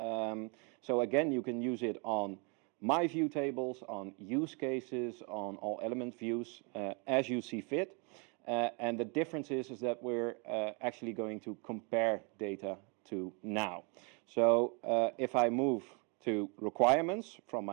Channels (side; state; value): left; quieter; 34.1 dB